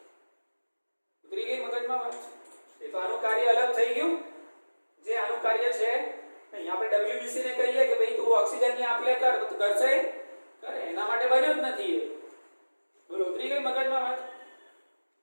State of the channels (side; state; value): both; inverted; correlation -1.00